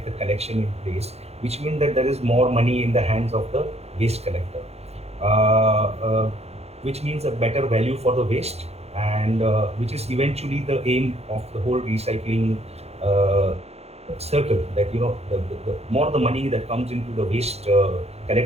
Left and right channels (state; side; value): late; left; 0.30 ms